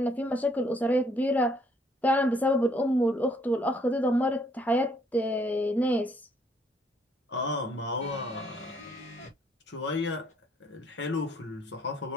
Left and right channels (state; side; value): normal; both; correlation 0.66